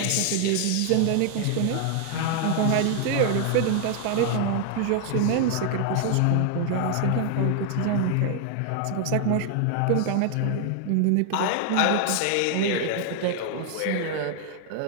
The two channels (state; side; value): different; both; correlation 0.00